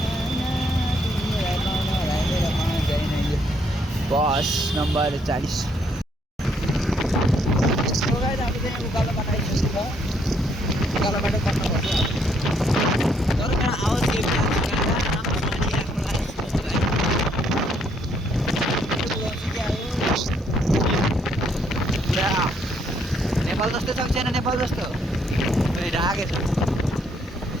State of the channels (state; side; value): normal; both; correlation 0.70